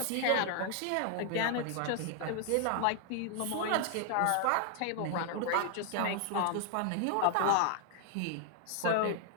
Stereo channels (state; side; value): different; both; correlation 0.00